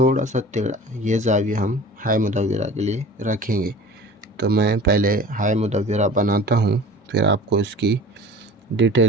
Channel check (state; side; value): normal; both; correlation 0.41